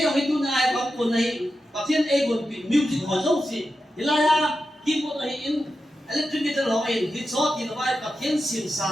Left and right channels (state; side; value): normal; both; correlation 0.90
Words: ông ấy tu này có cuốn này và thiên ấy cuốn bị music hỏi dấu gì thì là khi cuốn này in electric guitar hỏi in thì số thì nó vai và thiên xiên